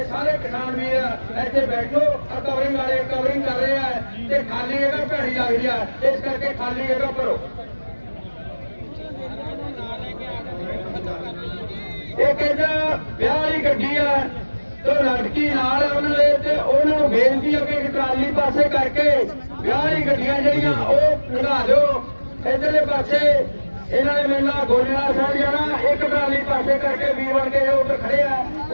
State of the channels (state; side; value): inverted; both; correlation -1.00